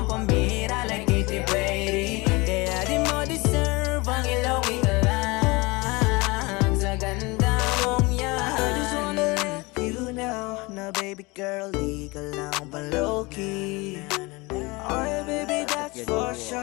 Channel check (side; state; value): right; quieter; 24.7 dB